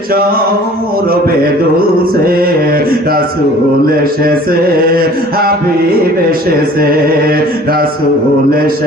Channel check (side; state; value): both; normal; correlation 0.49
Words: সৌরভে দুলছে। রাসূল এসেছে, হাবিব এসেছে, রাসূল